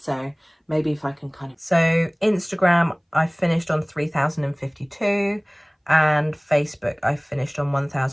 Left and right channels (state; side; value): identical; both; correlation 1.00